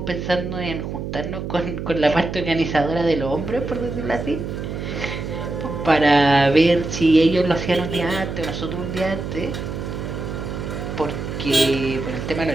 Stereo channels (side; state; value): right; noise; hum, 6 dB below the sound